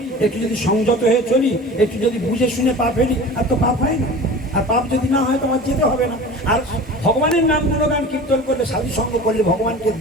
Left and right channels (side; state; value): both; normal; correlation 0.37